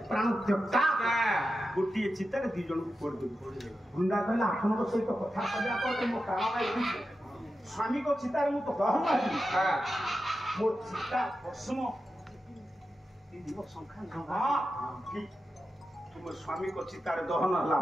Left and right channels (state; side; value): normal; both; correlation 0.90